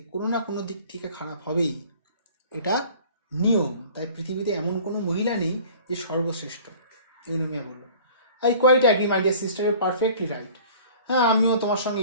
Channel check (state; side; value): inverted; both; correlation -0.47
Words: কোনো না কোনো দিক থেকে খারাপ হবেই, এটা নিয়ম। তাই পৃথিবীতে এমন কোনো মহিলা নেই যে সর্বশ্রেষ্ঠ। ইউনোমিয়া বলল, I quite agree my dear sister, you perfectly right. হ্যাঁ, আমিও তোমার সঙ্গে